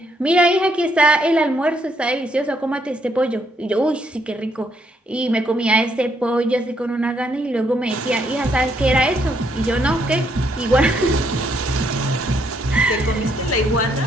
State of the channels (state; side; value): normal; both; correlation 0.73